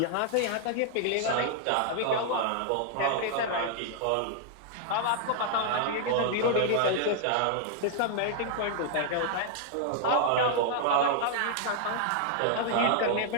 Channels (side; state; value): both; different; correlation -0.01